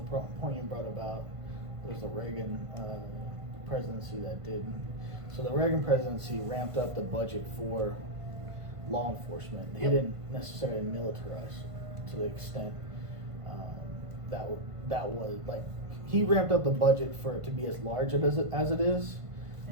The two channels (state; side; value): late; left; 1.5 ms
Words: point you brought about, there's the Reagan presidency that did. So the Reagan presidency ramped up the budget for law enforcement. He didn't necessarily militarize to the extent that was like, he ramped up the budget for it to be as large as it is,